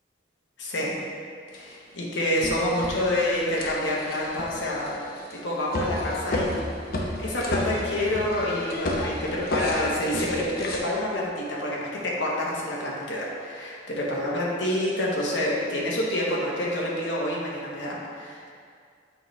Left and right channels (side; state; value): both; normal; correlation 0.19